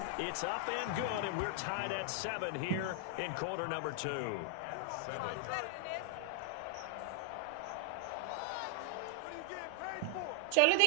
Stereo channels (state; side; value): different; both; correlation 0.00